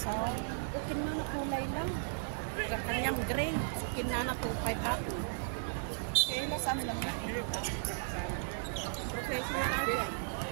okay na na kulay lang. Yung kanyang gray. Kinana to 5 up. Eh, nasaan lang yan? Okay.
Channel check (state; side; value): silent; left; 54 dB below the other